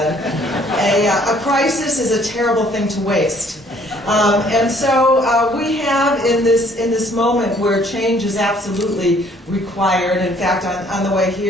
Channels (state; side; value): normal; both; correlation 0.60